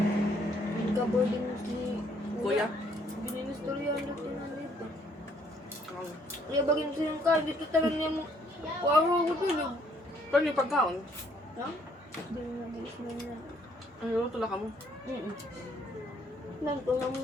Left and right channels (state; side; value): normal; both; correlation 0.66